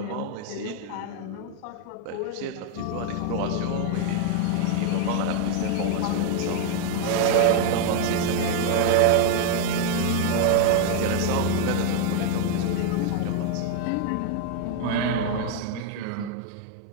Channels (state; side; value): different; both; correlation 0.01